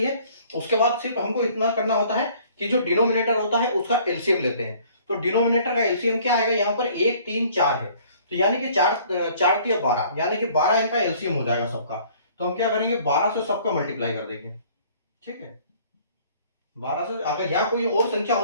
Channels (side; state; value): both; inverted; correlation -0.55